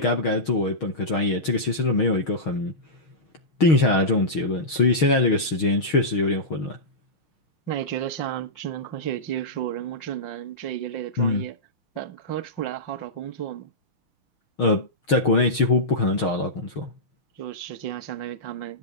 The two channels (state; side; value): late; right; 6.3 ms